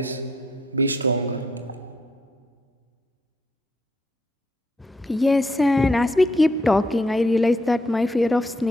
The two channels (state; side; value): normal; both; correlation 0.75